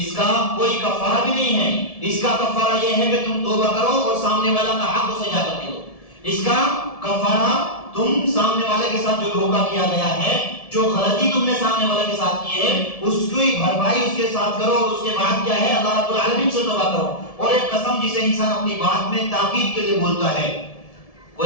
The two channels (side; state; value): right; late; 1.7 ms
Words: کا کوئی کفارہ بھی نہیں ہے. اس کا کفارہ یہ ہے کہ تم توبہ کرو اور سامنے والا کا حق اسے جا کر دے دو. اس کا کفارہ تم سامنے والے کے ساتھ جو دھوکہ کیا گیا ہے، جو غلطی تم نے سامنے والے کے ساتھ کی ہے، اس کی بھرپائی اس کے ساتھ کرو، اور اس کے بعد کیا ہے اللہ رب العالمین سے توبہ کرو. اور ایک قسم جسے انسان اپنی بات میں تاکید کے لیے بولتا ہے،